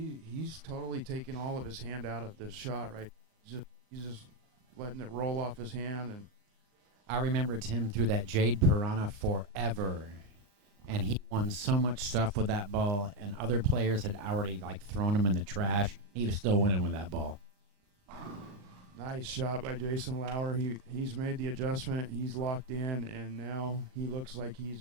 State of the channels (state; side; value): late; left; 39 ms